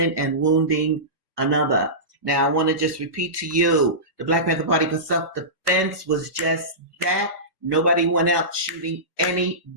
and wounding another. Now, I want to just repeat to you, the Black Panther Party for self-defense was just that. Nobody went out shooting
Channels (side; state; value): left; late; 1.2 ms